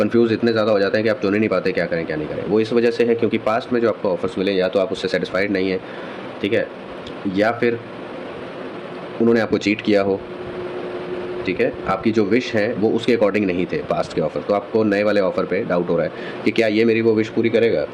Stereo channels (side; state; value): both; identical; correlation 1.00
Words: इतने ज़्यादा हो जाते हैं कि आप चुन ही नहीं पाते क्या करें क्या नहीं करें। वो इस वजह से है क्योंकि पास्ट में जो आपको ऑफ़र्स मिले या तो आप उससे सेटिस्फाइड नहीं हैं, ठीक है, या फिर उन्होंने आपको चीट किया हो, ठीक है, आपकी जो विश है वो उसके अकॉर्डिंग नहीं थे पास्ट के ऑफ़र। तो आपको नए वाले ऑफ़र पे डाउट हो रहा है कि क्या ये मेरी वो विश पूरी करेगा,